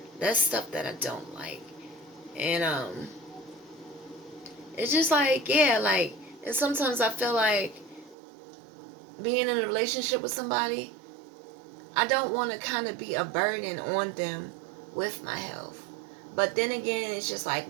That's stuff that I don't like. And it's just like, yeah, like, and sometimes I feel like being in a relationship with somebody, I don't want to kind of be a burden on them with my health. But then again, it's just like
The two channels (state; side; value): drops out; left; at 8.2 s